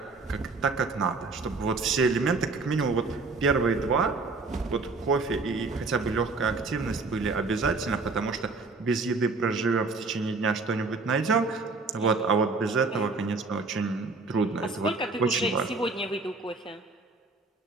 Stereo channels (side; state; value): left; quieter; 3.8 dB